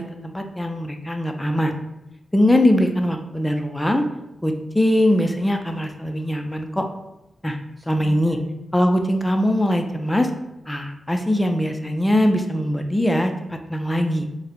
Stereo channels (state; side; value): normal; both; correlation 0.93